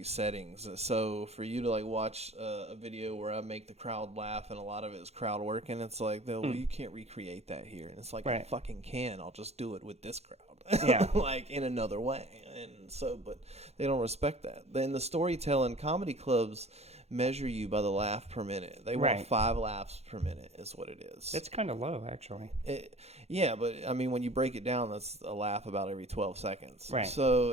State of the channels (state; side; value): late; left; 0.31 ms